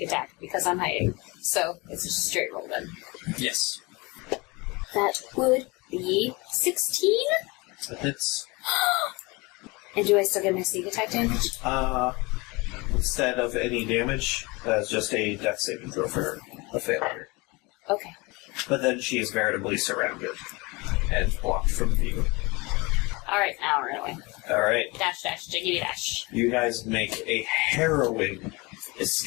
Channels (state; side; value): quieter; right; 25.3 dB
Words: attack, because I'm hiding. So, it's just a straight roll then. Yes. That would be 16? It's, And do I still get my sneak attack damage? instead of any damage, that's just a death saving throw for her. A failure. Okay. But then she is veritably surrounded and blocked from view. Alright, now run away. Alright. Dash, jiggity dash. You guys make a harrowing